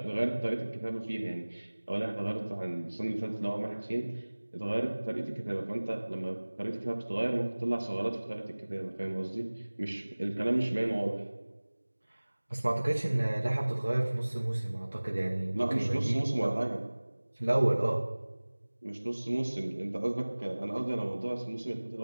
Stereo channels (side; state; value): both; inverted; correlation -1.00